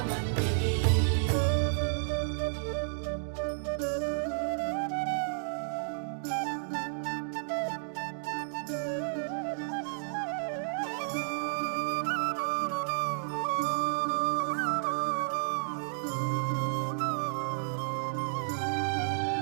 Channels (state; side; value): silent; left; digital silence